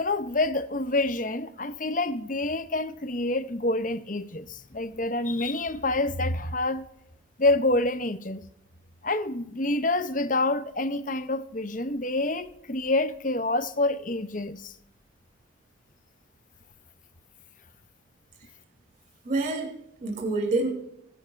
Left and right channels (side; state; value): both; normal; correlation 0.05